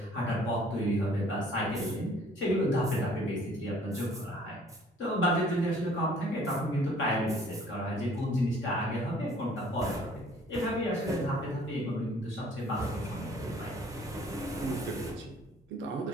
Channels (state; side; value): normal; both; correlation 0.56